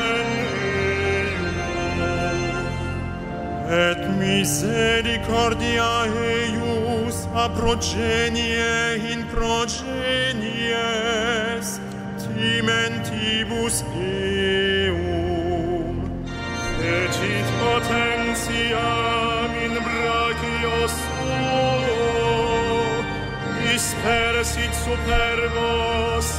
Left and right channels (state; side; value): identical; both; correlation 1.00